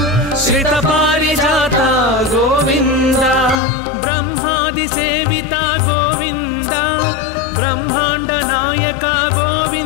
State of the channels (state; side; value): drops out; right; at 3.6 s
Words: श्रित पारिजात गोविंद ब्रह्मादि सेविता गोविंद ब्रह्मांड नायक